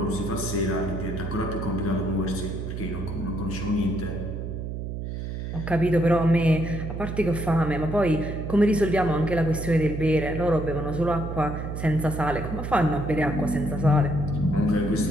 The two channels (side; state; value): right; noise; hum, 5 dB below the sound